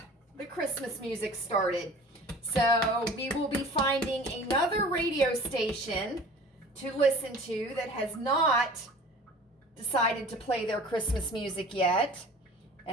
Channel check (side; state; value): both; normal; correlation 0.43